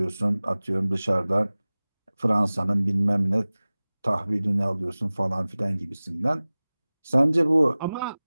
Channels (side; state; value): both; inverted; correlation -0.98